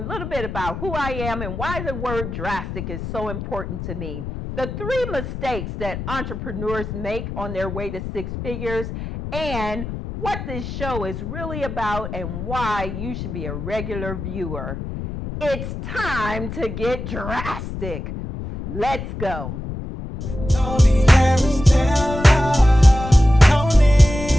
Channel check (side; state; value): left; noise; rumble, 7 dB below the sound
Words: bit about who I am and why the word drastic is so important to me. The 3 mistakes that entrepreneurs make on their way to 6 figures, and what this show is really about and why you should be a regular viewer. It's time to get drastic. Let's go. Toni Harris Taylor,